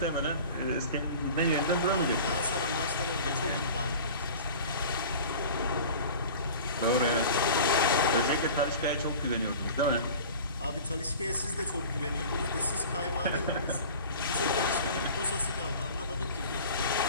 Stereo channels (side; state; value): both; inverted; correlation -0.39